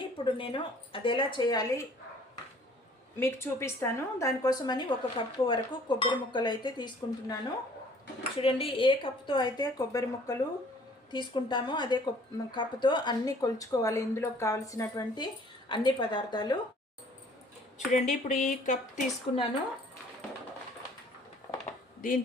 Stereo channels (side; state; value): both; normal; correlation 0.55